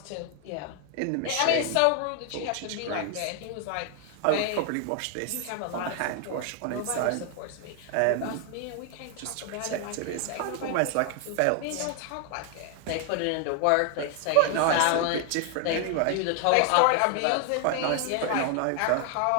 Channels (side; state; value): both; different; correlation 0.00